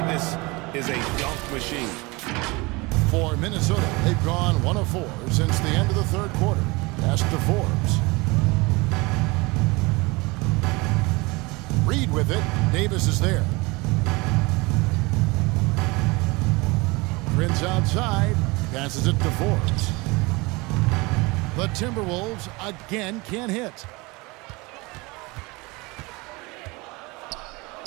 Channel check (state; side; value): quieter; left; 24.9 dB